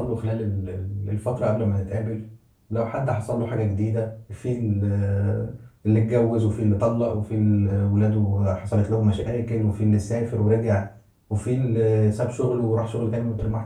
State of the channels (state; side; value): identical; both; correlation 1.00